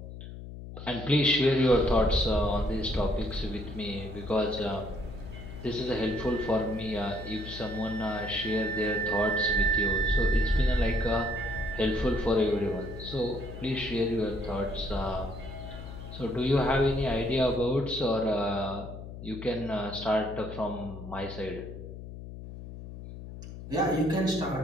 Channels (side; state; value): left; noise; hum, 11 dB below the sound